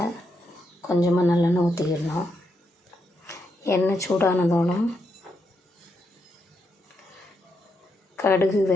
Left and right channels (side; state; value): both; normal; correlation 0.81